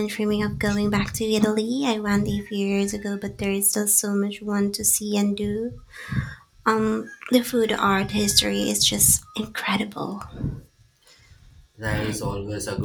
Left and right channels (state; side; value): identical; both; correlation 1.00